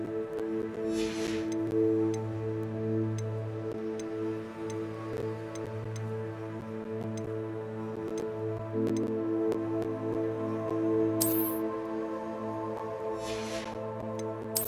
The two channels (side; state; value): both; identical; correlation 1.00